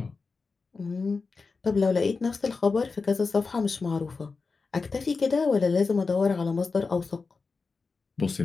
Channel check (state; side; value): quieter; right; 4.4 dB